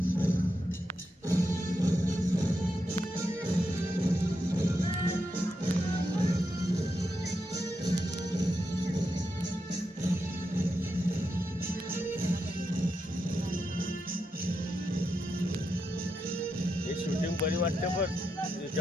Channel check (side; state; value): both; normal; correlation 0.85